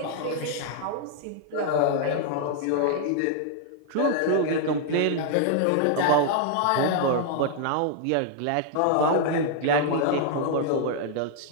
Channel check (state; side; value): different; both; correlation 0.00